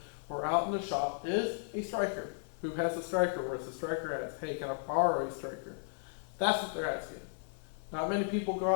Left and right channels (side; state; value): right; silent; 54 dB below the other